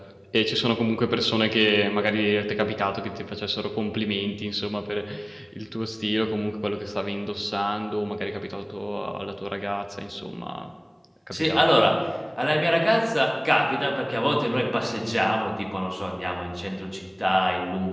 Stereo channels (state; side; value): identical; both; correlation 1.00